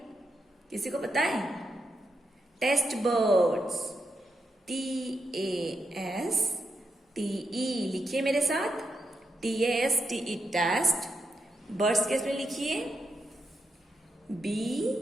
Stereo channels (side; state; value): both; normal; correlation 0.84